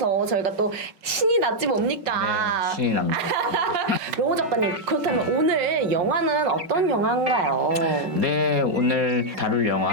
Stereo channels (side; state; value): left; late; 5.3 ms